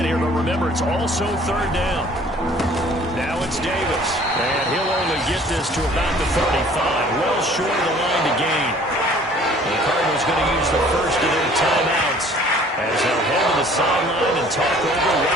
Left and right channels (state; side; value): normal; both; correlation 0.53